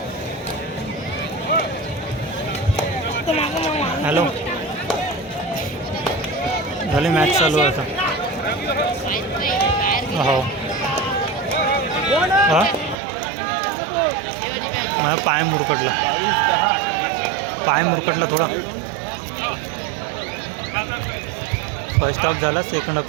झाली मॅच चालू आहे आता. हो हां माझा पाय मुरकटला थोडा. फर्स्ट हाफ झाला, सेकंड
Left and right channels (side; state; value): left; drops out; at 13.0 s